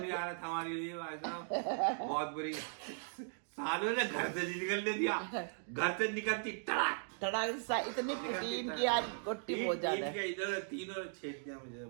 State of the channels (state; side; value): silent; left; digital silence